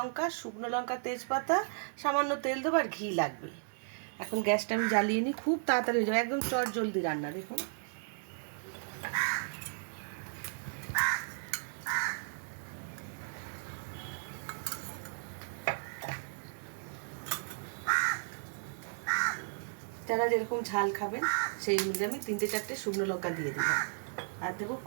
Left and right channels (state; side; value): silent; left; digital silence